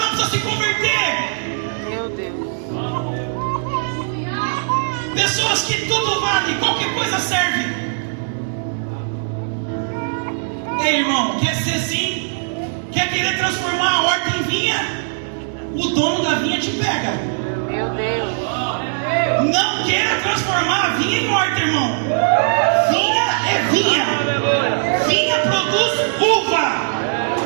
precisa se converter. Meu Deus. Pessoas que tudo vale, qualquer coisa serve. Ei, irmão, quer ser assim? Quer querer transformar a horta em vinha? O dono da vinha te pega. Meu Deus. Não queira transformar a vinha em horta, irmão. Vinha é vinha. Vinha produz uva.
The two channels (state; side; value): silent; left; 66 dB below the other